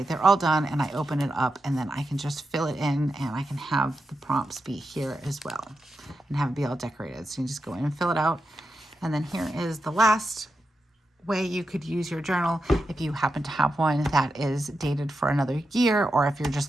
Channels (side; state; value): both; normal; correlation 0.88